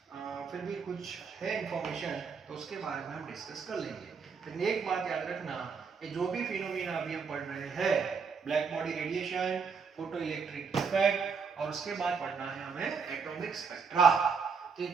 फिर भी कुछ है इंफॉर्मेशन तो उसके बारे में हम डिस्कस कर लेंगे। लेकिन एक बात याद रखना ये जो भी फिनोमेना अभी हम पढ़ रहे हैं black body radiation photo electric effect और उसके बाद पढ़ना है हमें एटॉमिक स्पेक्ट्रा। तो ये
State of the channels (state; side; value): quieter; left; 5.6 dB